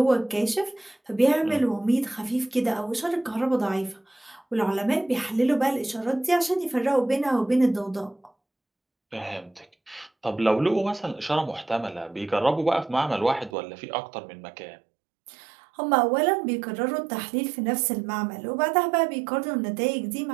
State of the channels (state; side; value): drops out; left; at 13.6 s